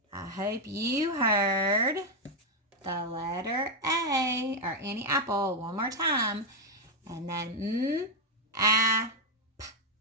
I hope you heard the letter A, or Annie Apple, one more time. And then p.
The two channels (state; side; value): normal; both; correlation 0.01